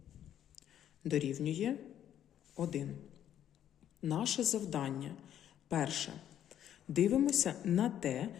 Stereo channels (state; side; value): quieter; right; 10.6 dB